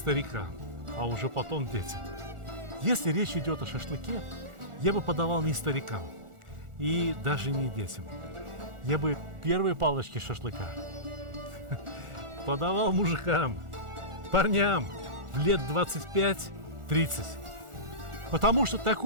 а уже потом детям. Если речь идет о шашлыке, я бы подавал не старикам и даже не детям. Я бы первые палочки шашлыка подавал мужикам, парням в лет 25-30. Потому что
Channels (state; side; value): late; left; 1.4 ms